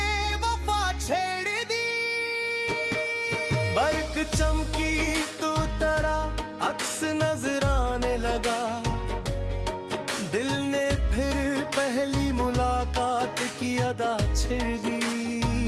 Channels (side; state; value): both; identical; correlation 1.00